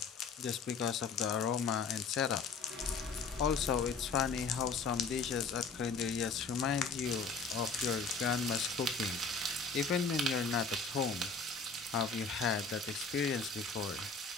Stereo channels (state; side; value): quieter; right; 4.7 dB